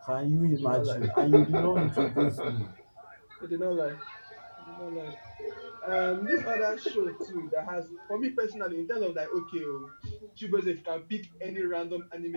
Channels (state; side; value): inverted; both; correlation -1.00